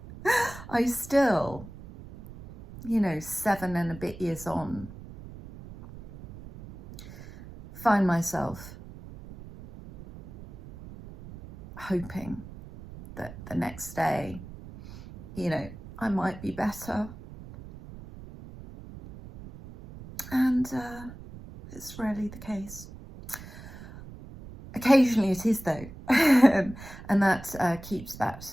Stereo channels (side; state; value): right; noise; rumble, 15 dB below the sound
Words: still, 7 and a bit years on, find myself hoping that the next day, I might be better. And it's rarely the case. Occasionally it is, though, and that keeps that